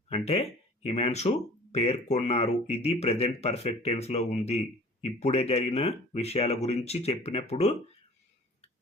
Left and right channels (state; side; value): normal; both; correlation 0.47